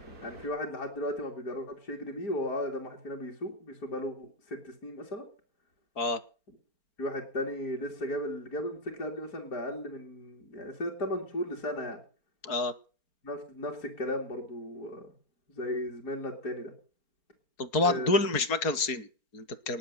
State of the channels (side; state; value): right; late; 4.4 ms